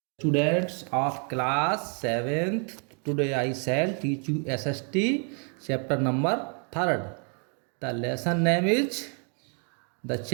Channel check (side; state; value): left; quieter; 39.7 dB